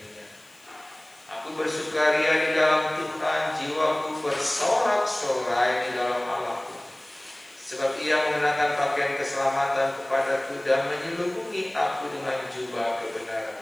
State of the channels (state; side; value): noise; left; hiss, 28 dB below the sound